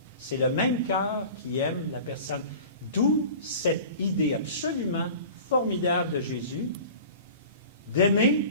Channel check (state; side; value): inverted; both; correlation -0.39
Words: c'est le même cœur qui aime la personne. D'où cette idée absolument formidable de Jésus d'aimer